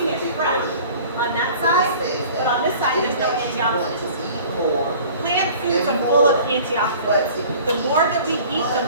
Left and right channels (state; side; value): inverted; both; correlation -0.47